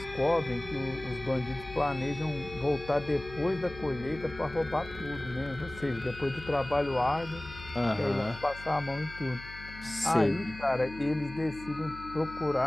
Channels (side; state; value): left; noise; hum, 15 dB below the sound